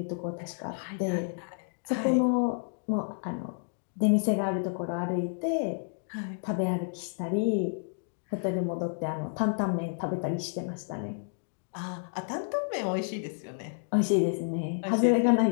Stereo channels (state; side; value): silent; right; digital silence